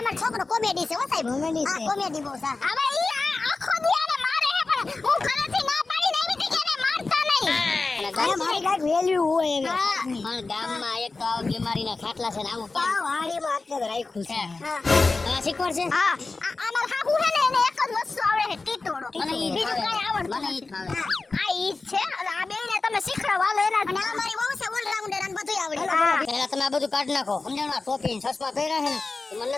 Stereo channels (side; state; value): right; quieter; 3.7 dB